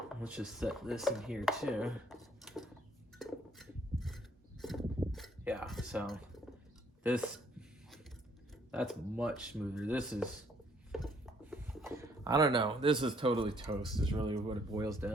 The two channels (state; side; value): normal; both; correlation 0.65